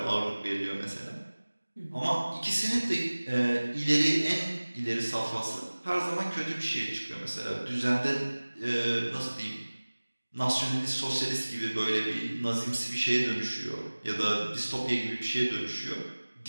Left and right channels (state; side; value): inverted; both; correlation -1.00